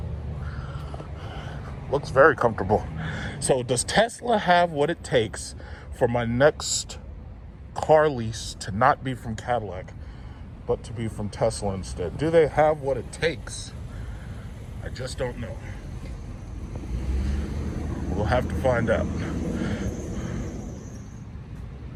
Looks very comfortable. So does Tesla have what it takes for my next car lease to not be from Cadillac, but to be from Tesla instead? Do they have what it takes? I just don't know. We'll have to find out.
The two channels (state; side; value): identical; both; correlation 1.00